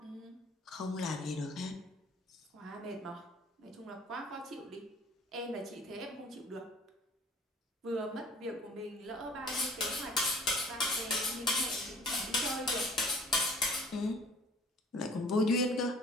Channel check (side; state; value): both; normal; correlation 0.51